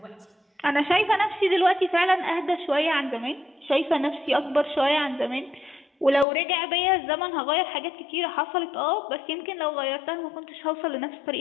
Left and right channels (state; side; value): drops out; right; at 6.2 s